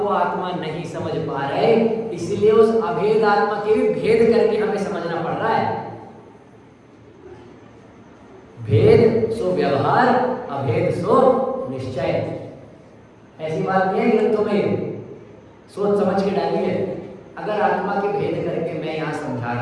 आत्मा नहीं समझ पा रहे, इसलिए उस अभेद आत्मा के भी भेद करके हमें समझना पड़ रहा है। भेद सो व्यवहार, अभेद सो निश्चय। ऐसी बात नहीं है ग्रंथों में, सोच समझ के डालिए। अगर आत्मा के भेद करके मैं यहाँ समझा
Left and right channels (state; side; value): identical; both; correlation 1.00